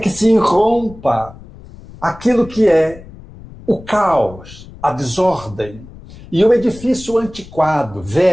se irrompa aquilo que é o caos, a desordem, e o edifício antiquado,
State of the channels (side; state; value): left; noise; rumble, 18 dB below the sound